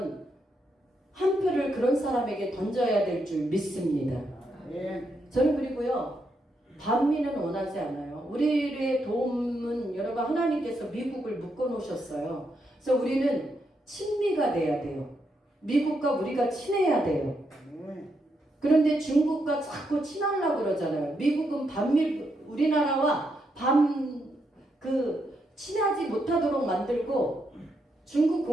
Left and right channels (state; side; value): normal; both; correlation 0.80